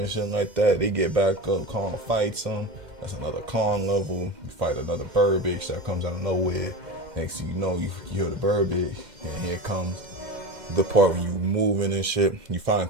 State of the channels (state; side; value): late; left; 2.1 ms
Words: shit like that. They get back up. Kong fights them. That's another Kong level. You fight another bird bitch that comes out of nowhere. Next thing you know, you hear the bird bitch. And here comes the part where you moving and shit. You